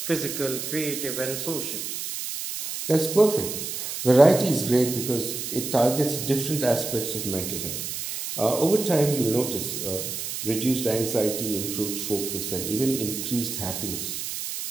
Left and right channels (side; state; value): right; noise; hiss, 5 dB below the sound